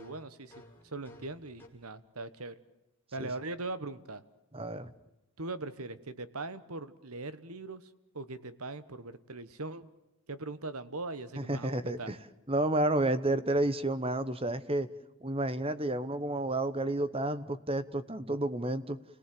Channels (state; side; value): normal; both; correlation 0.40